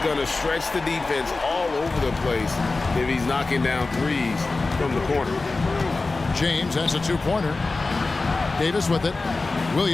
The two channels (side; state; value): right; quieter; 3.6 dB